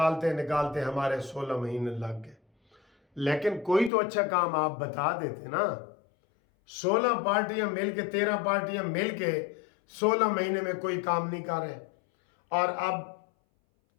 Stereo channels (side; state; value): right; drops out; at 3.9 s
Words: हमारे 16 महीने लग गए। लेकिन कोई तो अच्छा काम आप बता देते ना। 16 पार्टियां मिलके, 13 पार्टियां मिलके 16 महीने में कोई काम नहीं कर रहे, और अब